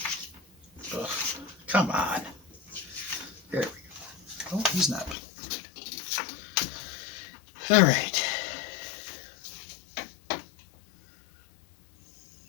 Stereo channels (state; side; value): drops out; right; at 5.2 s